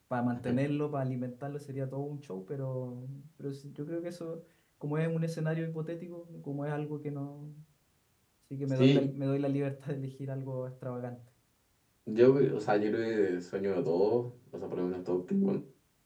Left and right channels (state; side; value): identical; both; correlation 1.00